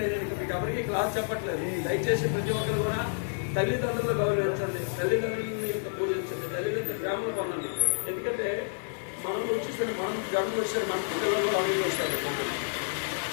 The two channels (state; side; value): silent; right; digital silence